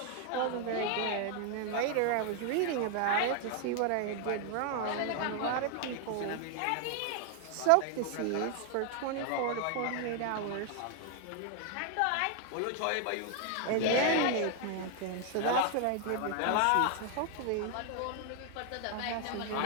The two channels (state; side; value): different; both; correlation 0.00